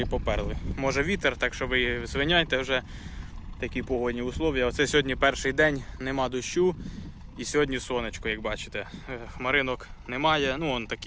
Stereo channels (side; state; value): both; identical; correlation 1.00